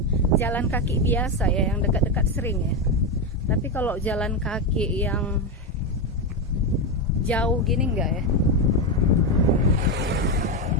jalan kaki biasa ya, yang dekat-dekat sering ya. Tapi kalau jalan kaki yang jauh gini enggak ya.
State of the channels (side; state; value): both; normal; correlation 0.10